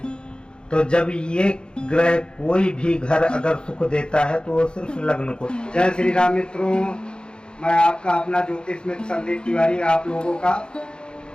तो जब ये ग्रह कोई भी घर अगर सुख देता है तो वो सिर्फ लग्न को। जय श्री राम मित्रों, मैं आपका अपना ज्योतिष मित्र संदीप तिवारी आप लोगों का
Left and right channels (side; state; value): right; late; 0.050 ms